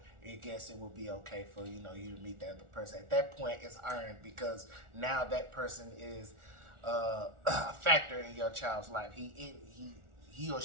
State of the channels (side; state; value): left; late; 1.4 ms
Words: I guess it would be okay for, you know, you to meet that other person. At that point, it's earned because now that person is a factor in your child's life. He or